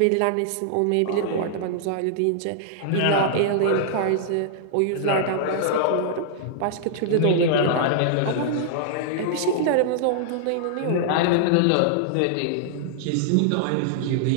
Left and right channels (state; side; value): different; both; correlation -0.01